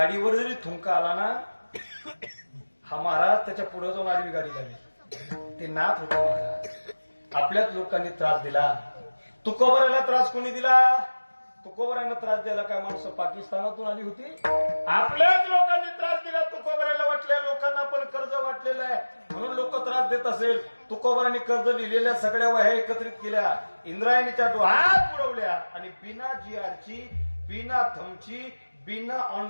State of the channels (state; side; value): inverted; both; correlation -1.00